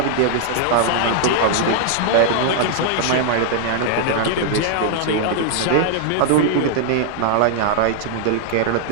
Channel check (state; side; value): different; both; correlation 0.00